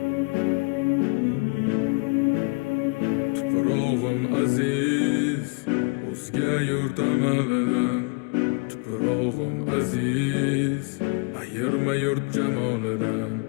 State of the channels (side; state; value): right; quieter; 32.3 dB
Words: aziz, o'zga yurt amalidan. Tuprog'im aziz, ayirma yurt jamolidan.